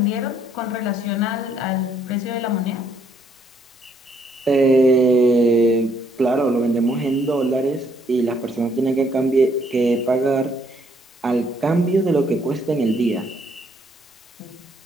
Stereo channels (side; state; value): both; normal; correlation 0.68